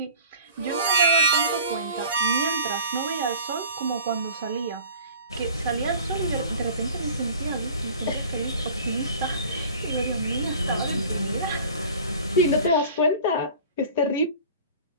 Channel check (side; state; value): both; inverted; correlation -0.44